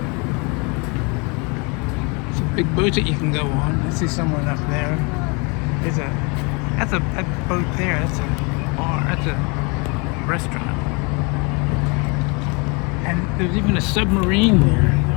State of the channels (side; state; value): right; quieter; 30.9 dB